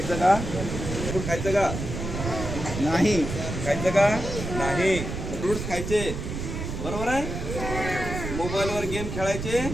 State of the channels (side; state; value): right; noise; rumble, 5 dB below the sound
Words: का? फूड खायचं का नाही? खायचं का नाही? फ्रूट्स खायचे, बरोबर आहे. मोबाईलवर गेम खेळायचे